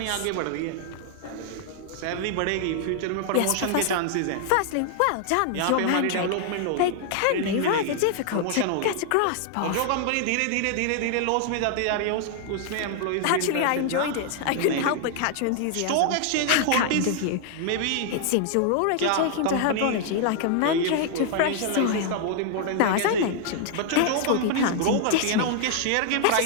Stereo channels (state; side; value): different; both; correlation 0.00